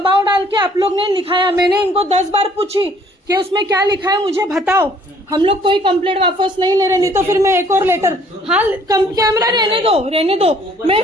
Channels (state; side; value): normal; both; correlation 0.59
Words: डाल के आप लोग ने लिखाया। मैंने इनको 10 बार पूछी कि उसमें क्या लिखा है मुझे बताओ। हम लोग कोई कंप्लेंट वापस नहीं ले रहे, नहीं तो फिर मैं एक और लेटर, हाँ कैमरा रहने दो, मैं